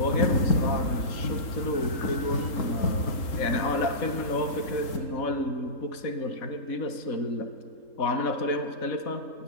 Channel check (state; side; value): late; right; 3.8 ms